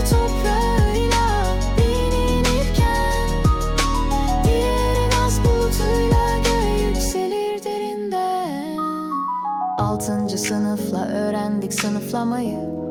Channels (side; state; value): both; identical; correlation 1.00